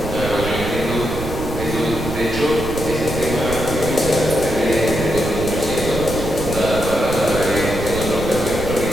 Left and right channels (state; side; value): noise; right; rumble, 7 dB below the sound